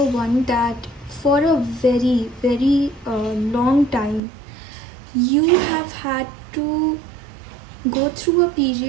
1 that for a very, very long time, you have had to go through a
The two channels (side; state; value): left; drops out; at 4.2 s